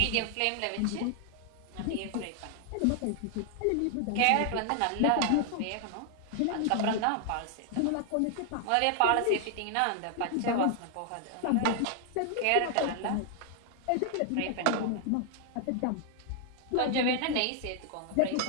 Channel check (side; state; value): both; different; correlation 0.00